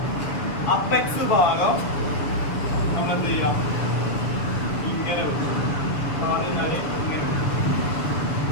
അപ്പെക്സ് ഭാഗം നമ്മൾ എന്ത് ചെയ്യാം, ഇങ്ങനെ ഇങ്ങനെ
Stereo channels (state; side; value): late; right; 7.0 ms